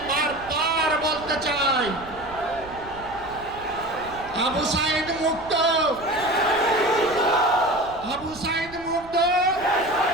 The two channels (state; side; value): noise; right; rumble, 18 dB below the sound